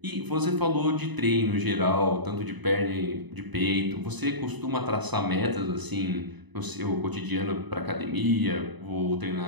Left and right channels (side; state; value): left; late; 1.0 ms